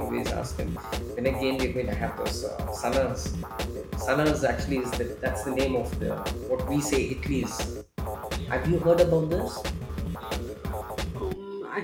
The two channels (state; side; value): identical; both; correlation 1.00